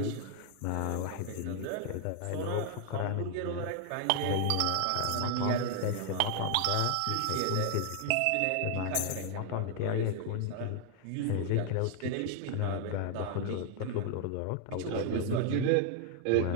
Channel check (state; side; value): different; both; correlation 0.00